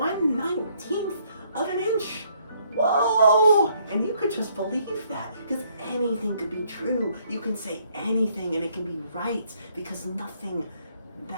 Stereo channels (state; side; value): inverted; both; correlation -0.67